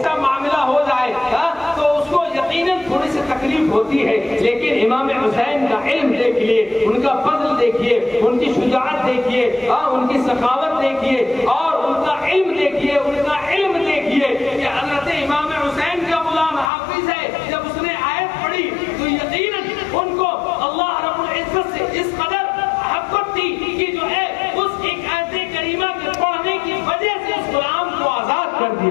معاملہ ہو جائے تو اس کو یقیناً تھوڑی سی تکلیف ہوتی ہے، لیکن امام حسین کا علم دیکھیے، ان کا فضل دیکھیے، ان کی شجاعت دیکھیے، ان کی سخاوت دیکھیے اور ان کا علم دیکھیے، ان کا علم دیکھیے کہ حضرت امام حسین کا غلام حافظ ہے۔ جب اس نے آیت پڑھی تو یقیناً ان کو اللہ رب العزت سے اس قدر محبت تھی کہ جو ہے اس ایک آیت کریمہ کے پڑھنے کی وجہ سے اس غلام کو آزاد کر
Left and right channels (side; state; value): right; drops out; at 16.7 s